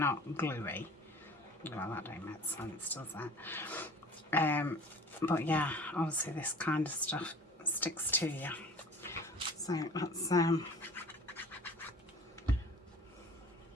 gluey. Well, that don't make sense, does it? But yeah, obviously this kind of stuff sticks to you. So let's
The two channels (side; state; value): both; normal; correlation 0.45